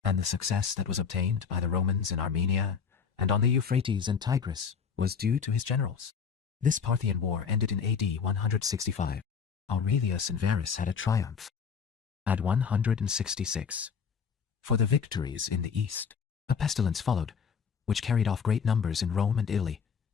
and the success that was obtained by the Romans in Armenia and on the Euphrates and Tigris was due to his generals. This Parthian war ended in AD 165. Aurelius and Verus had a triumph. At 166, for the victories in the east, a pestilence followed, which carried off great numbers in Rome and Italy,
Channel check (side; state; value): right; quieter; 6.4 dB